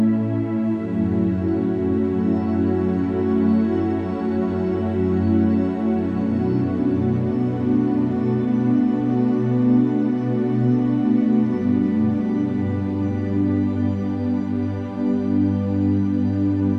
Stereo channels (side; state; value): both; identical; correlation 1.00